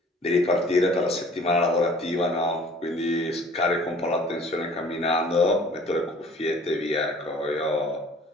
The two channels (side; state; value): both; normal; correlation 0.51